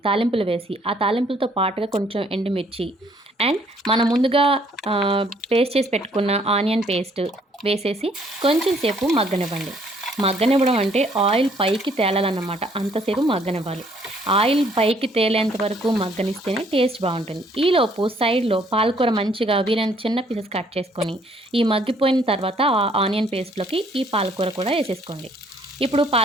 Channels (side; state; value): both; normal; correlation 0.64